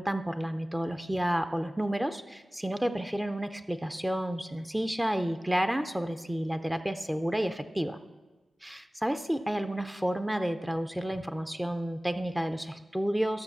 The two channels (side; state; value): both; normal; correlation 0.98